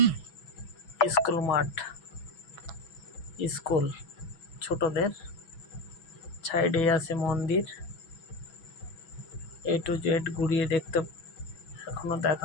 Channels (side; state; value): right; late; 6.2 ms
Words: স্কুল মাঠ। স্কুল ছোটদের, সাইডে আছে মন্দির। A to Z ঘুরিয়ে দেখতে এখনো